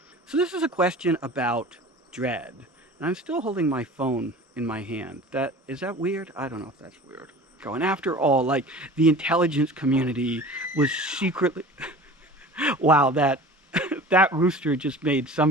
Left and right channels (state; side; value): normal; both; correlation 0.40